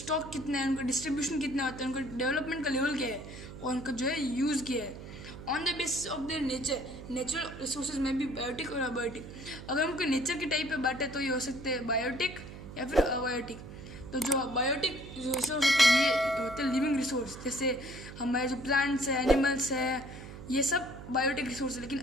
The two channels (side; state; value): right; noise; hum, 13 dB below the sound